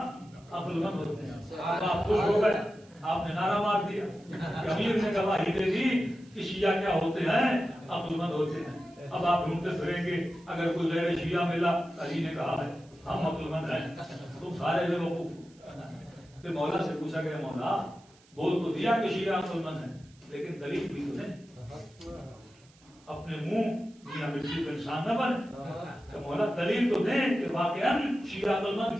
عقل مند ہوتے ہیں۔ آپ خوش ہو گئے، آپ نے نعرہ مار دیا کہ امیر نے گواہی دے دی کہ شیعہ کیا ہوتے ہیں؟ عقل مند ہوتے ہیں۔ اب آپ ڈھونڈتے پھریں گے اگر کوئی غیر شیعہ ملا، علی نے کہا ہے ہم عقل مند ہیں، تم سارے بیوقوف۔ پھر مولا سے پوچھا گیا مولا بول تو دیا کہ شیعہ عقل مند ہیں، لیکن دلیل بھی تو نہیں، اپنے منہ میاں مرچی کو انسان نہ بنے، تو مولا دلیل تو دیں کہ واقعاً شیعہ عقل مند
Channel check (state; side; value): noise; right; hiss, 29 dB below the sound